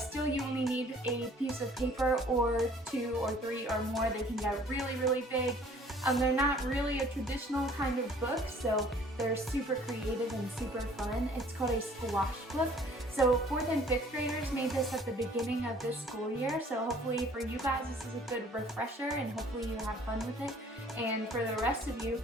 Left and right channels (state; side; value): normal; both; correlation 0.55